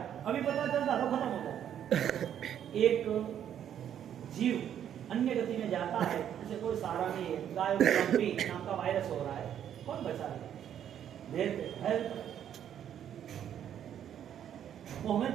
अभी पता चलता तो खत्म हो जाता। एक जीव अन्य गति में जाता है, उसे कोई सहारा नहीं है, गाय नाम का वायरस हो रहा है, कौन बचाएगा? वो हमें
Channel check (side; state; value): left; quieter; 9.8 dB